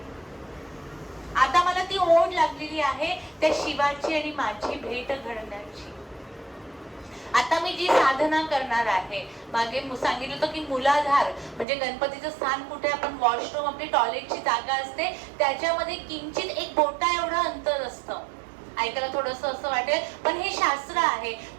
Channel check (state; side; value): drops out; left; at 11.7 s